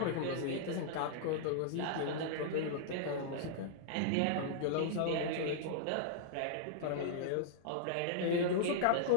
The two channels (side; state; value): both; different; correlation -0.01